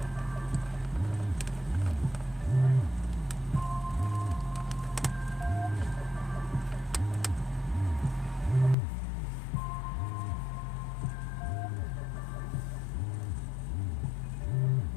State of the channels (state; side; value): drops out; right; at 8.8 s